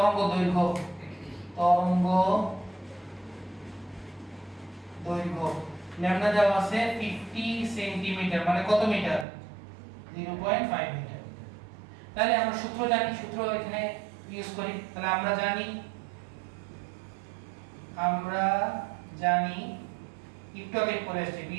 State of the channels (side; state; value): left; drops out; at 9.2 s